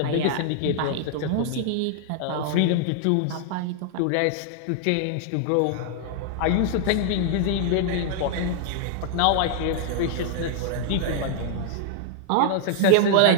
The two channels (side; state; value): both; different; correlation 0.00